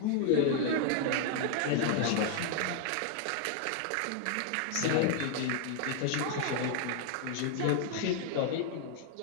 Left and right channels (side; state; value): both; different; correlation 0.00